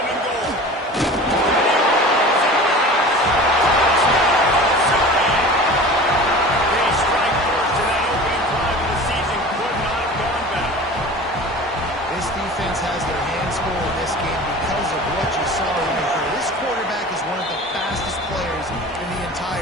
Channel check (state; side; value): normal; both; correlation 0.38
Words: and goal. They strike first in that opening drive of the season. Could not have gone better. This defense has their hands full in this game because of what you saw right here. This quarterback is one of the fastest players in the